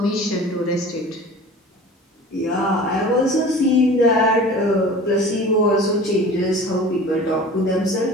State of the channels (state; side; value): normal; both; correlation 0.40